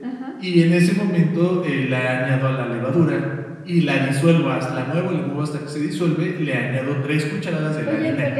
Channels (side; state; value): both; identical; correlation 1.00